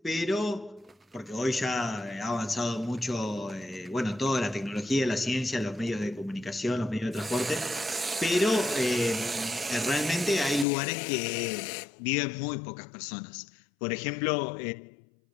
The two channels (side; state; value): right; drops out; at 10.7 s